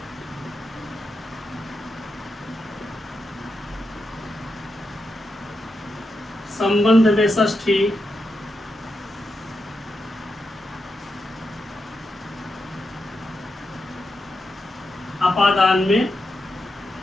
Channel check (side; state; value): both; normal; correlation 0.86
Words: संबंध में षष्ठी, अपादान में